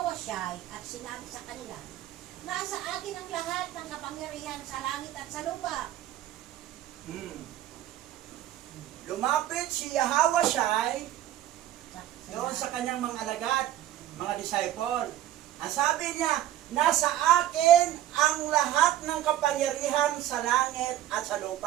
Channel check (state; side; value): quieter; left; 12.7 dB